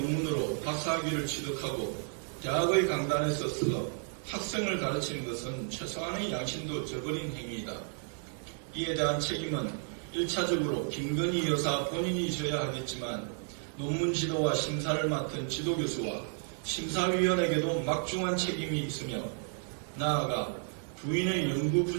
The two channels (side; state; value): left; silent; 56 dB below the other